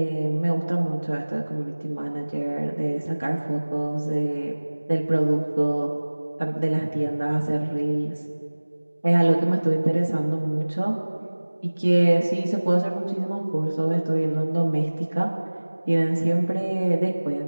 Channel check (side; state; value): both; inverted; correlation -1.00